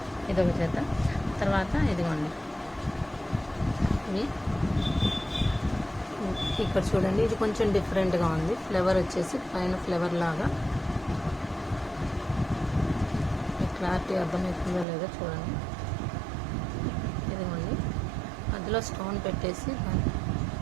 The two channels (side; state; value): left; drops out; at 14.9 s